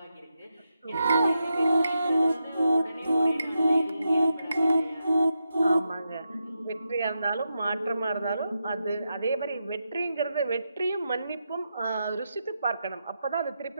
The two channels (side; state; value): both; inverted; correlation -0.87